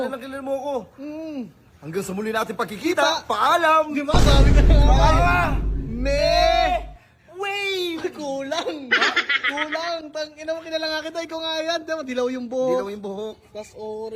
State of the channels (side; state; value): both; identical; correlation 1.00